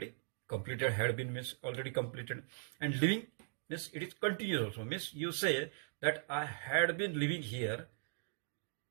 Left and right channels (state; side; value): silent; left; digital silence